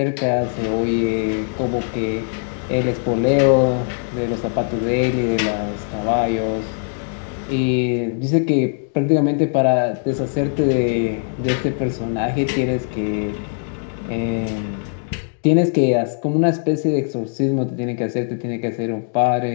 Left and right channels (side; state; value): right; silent; digital silence